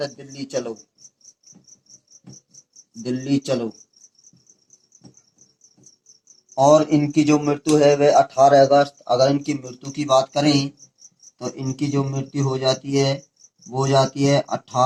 दिल्ली चलो। और इनकी जो मृत्यु है वह 18 अगस्त, अगर इनकी मृत्यु की बात करें तो इनकी जो मृत्यु हो जाती है वो जाती है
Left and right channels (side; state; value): both; identical; correlation 1.00